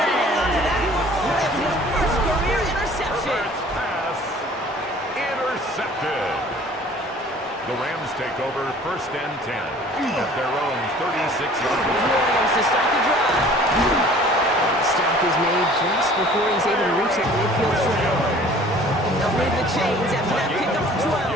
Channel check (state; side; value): normal; both; correlation 0.50